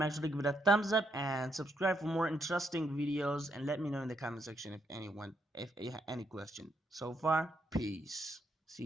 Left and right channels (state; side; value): normal; both; correlation 0.77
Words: sure to give it a thumbs up and subscribe for more interesting videos, and let me know in the comment section if you have any question. So far, peace. See